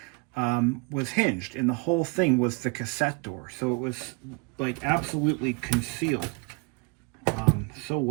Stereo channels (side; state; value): left; quieter; 30.8 dB